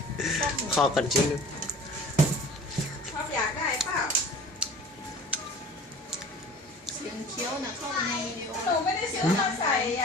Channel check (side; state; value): both; normal; correlation 0.43